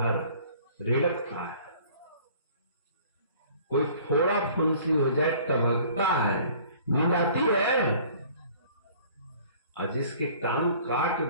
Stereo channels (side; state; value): both; inverted; correlation -0.52